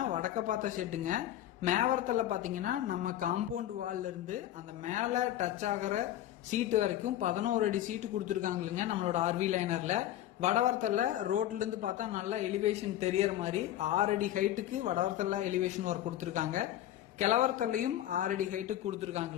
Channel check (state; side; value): quieter; right; 12.7 dB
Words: வடக்க பார்த்த ஷெட்டுங்க. மேவரத்துல பாத்தீங்கன்னா நம்ம காம்பவுண்ட் வால்ல இருந்து அந்த மேல டச் ஆகிற சீட்டு வரைக்கும் 11 அடி சீட்டு கொடுத்துருக்காங்களுங்க நம்மளோட ஆர்வி லைனர்ல. வடவரத்தில் ரோட்ல இருந்து பார்த்தா நல்லா எலிவேஷன் தெரியற மாதிரி 6 அடி ஹைட்டுக்கு வடவரத்தில் எலிவேஷன் ஒர்க் கொடுத்துருக்காங்க. கிழவரத்துலையும் 6 அடி ஹைட்டுக்கு